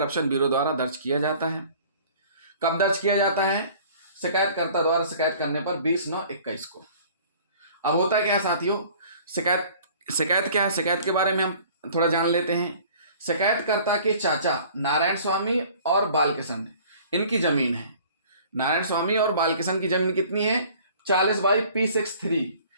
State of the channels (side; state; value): both; inverted; correlation -0.50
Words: ब्यूरो द्वारा दर्ज किया जाता है। कब दर्ज किया जाता है? शिकायतकर्ता द्वारा शिकायत करने पर 20/9/21 को। अब होता क्या है साथियों, शिकायत क्या है, शिकायत के बारे में हम थोड़ा जान लेते हैं। शिकायतकर्ता के चाचा नारायण स्वामी और बालकिशन इनकी जमीन है। नारायण स्वामी और बालकिशन की जमीन कितनी है? 40/P63